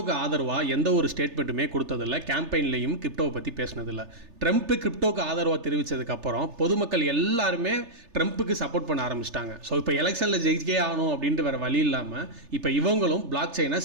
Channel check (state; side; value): late; left; 3.3 ms